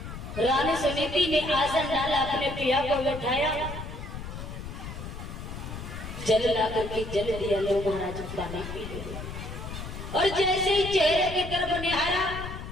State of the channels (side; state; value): left; noise; rumble, 9 dB below the sound